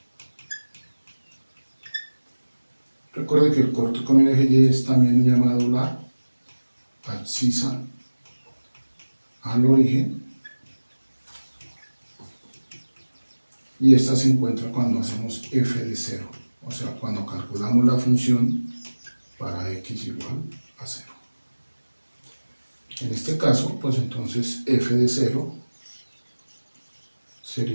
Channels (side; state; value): both; inverted; correlation -1.00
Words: Recuerde que el corte con el eje Y es también llamado la abscisa al origen, y esta se encuentra cuando hacemos f de 0, o sea, cuando calculamos la función para x igual a 0. En este caso, pues entonces f de 0